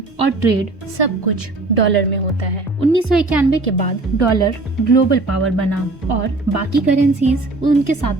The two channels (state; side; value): quieter; left; 3.1 dB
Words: और ट्रेड सब कुछ डॉलर में होता है। 1991 के बाद डॉलर ग्लोबल पावर बना और बाकी करेंसीज उनके साथ